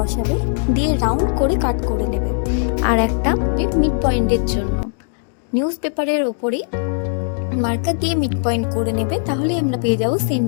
দিয়ে রাউন্ড করে কাট করে নেবে। আর একটা মিড পয়েন্টের জন্য নিউজ পেপারের ওপরেই মার্কার দিয়ে মিড পয়েন্ট করে নেবে, তাহলেই আমরা পেয়ে যাবো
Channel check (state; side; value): silent; right; digital silence